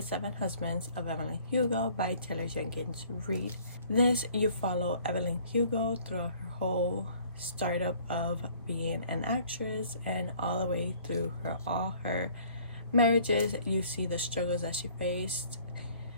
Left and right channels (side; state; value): both; inverted; correlation -0.56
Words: Seven Husbands of Evelyn Hugo by Taylor Jenkins Reid. This, you follow Evelyn Hugo throughout her whole startup of being an actress and all the way through all her marriages. You see the struggles that she faced